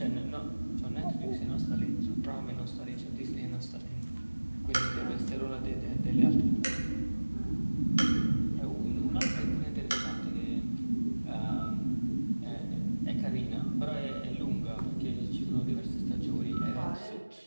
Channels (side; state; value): both; inverted; correlation -1.00